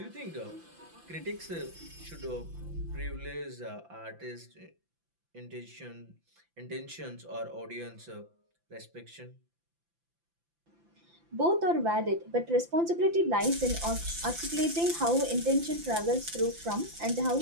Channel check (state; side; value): late; left; 5.9 ms